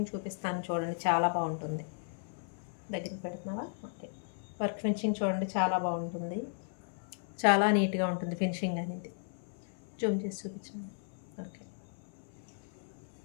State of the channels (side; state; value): right; silent; 54 dB below the other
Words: చూపిస్తాను చూడండి, చాలా బాగుంటుంది. దగ్గరికి పెడుతున్నావా? ఓకే. వర్క్ ఫినిషింగ్ చూడండి, చాలా బాగుంటుంది, చాలా నీట్గా ఉంటుంది ఫినిషింగ్ అనేది. జూమ్ చేసి చూపించండి. ఓకే.